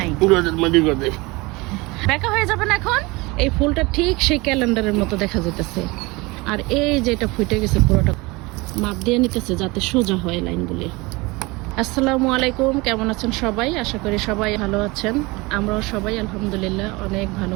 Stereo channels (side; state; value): left; quieter; 24.0 dB